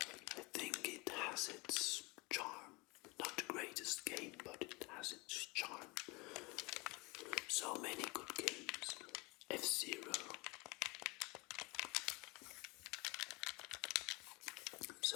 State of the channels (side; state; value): right; quieter; 26.0 dB